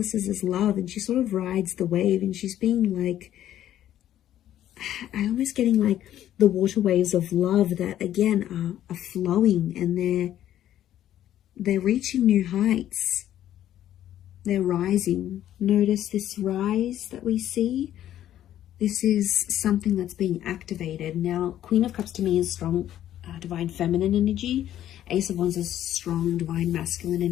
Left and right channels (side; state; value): right; quieter; 11.9 dB